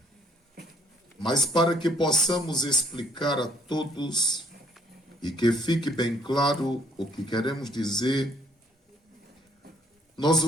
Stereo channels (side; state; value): both; normal; correlation 0.63